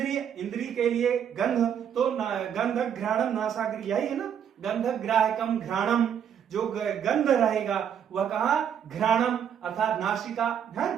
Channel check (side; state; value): left; quieter; 8.6 dB